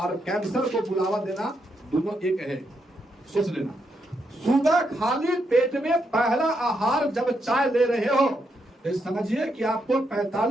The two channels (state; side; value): normal; both; correlation 0.80